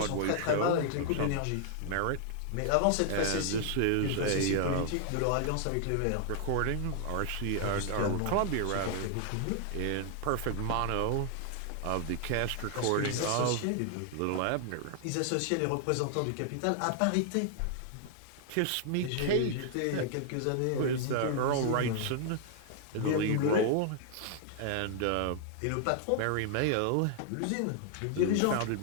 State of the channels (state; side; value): different; both; correlation 0.00